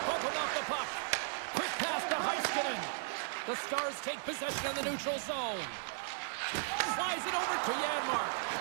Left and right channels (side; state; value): left; silent; digital silence